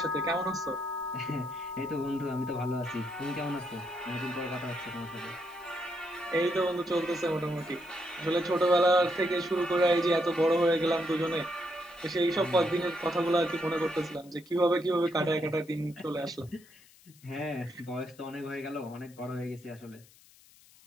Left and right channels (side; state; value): left; noise; hiss, 26 dB below the sound